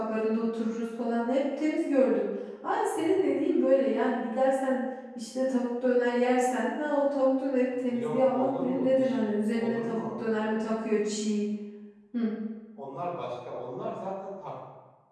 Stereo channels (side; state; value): both; identical; correlation 1.00